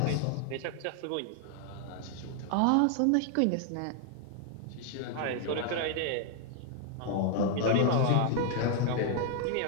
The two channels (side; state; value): both; different; correlation 0.00